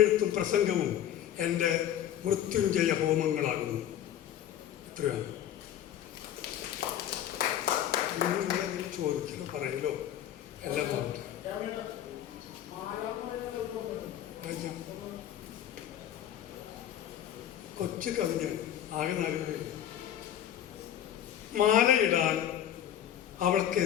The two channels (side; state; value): right; quieter; 10.9 dB